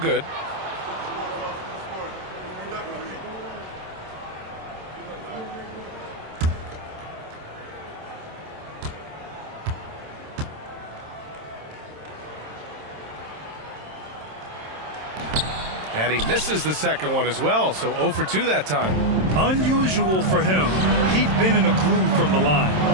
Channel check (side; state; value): left; late; 27 ms